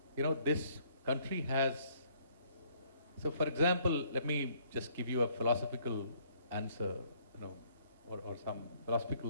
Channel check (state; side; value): inverted; both; correlation -0.65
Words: This country has, so for example, let me just give you a philosophical answer, or some